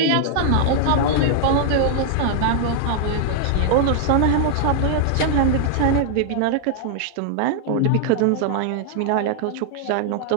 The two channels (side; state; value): both; different; correlation -0.01